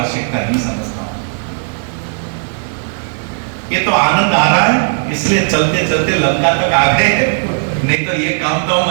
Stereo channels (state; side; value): silent; left; 70 dB below the other